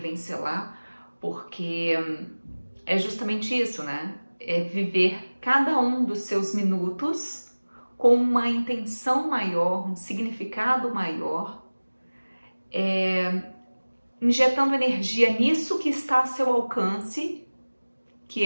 selar, porque é justamente isso, né? É viver cada um dos seus minutos com uma intenção maior, um significado maior, injetando energia nisso que está a seu alcance,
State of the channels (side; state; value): both; inverted; correlation -1.00